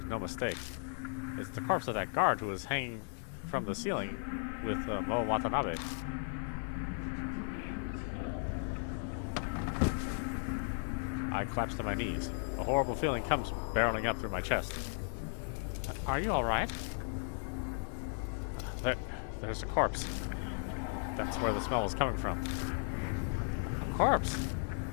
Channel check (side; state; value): right; silent; 54 dB below the other